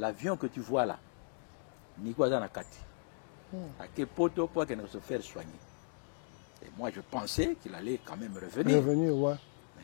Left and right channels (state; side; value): silent; right; digital silence